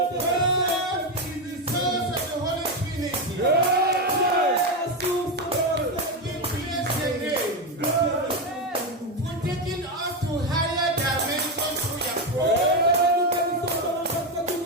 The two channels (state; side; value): normal; both; correlation 0.11